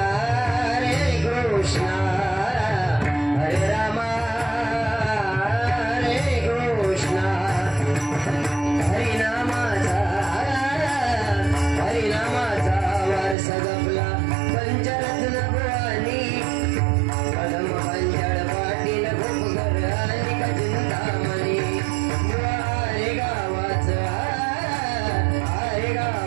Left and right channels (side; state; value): left; drops out; at 13.4 s